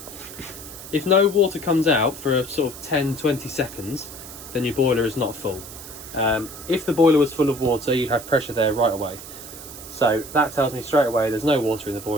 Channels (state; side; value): noise; right; hiss, 14 dB below the sound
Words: If no water comes out for a sort of 10-20 seconds, then your boiler is not full. If the boiler was full of water, you'd have pressure there right away. So that tells me straight away there's no water in the